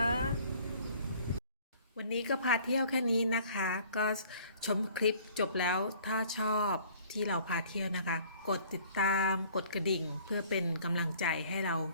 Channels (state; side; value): inverted; both; correlation -0.54